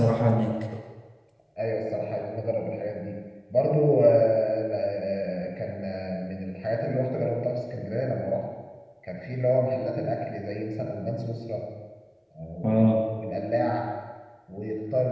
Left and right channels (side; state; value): both; identical; correlation 1.00